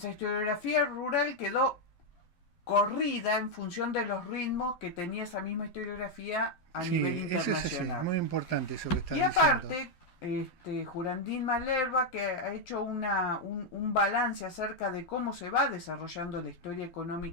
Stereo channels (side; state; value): right; late; 11 ms